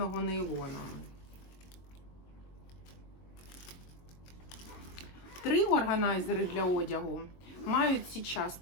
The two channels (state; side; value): late; right; 22 ms